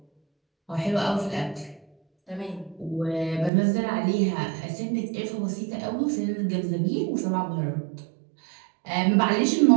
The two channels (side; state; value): left; drops out; at 3.5 s